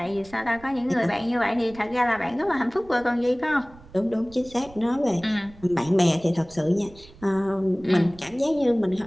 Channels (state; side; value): noise; right; rumble, 22 dB below the sound